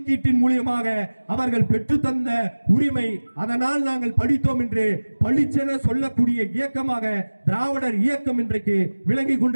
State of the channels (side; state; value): both; inverted; correlation -1.00